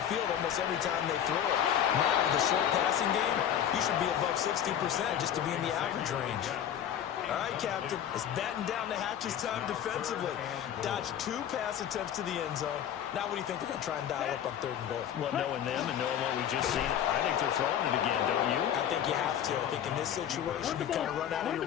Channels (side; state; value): right; quieter; 9.8 dB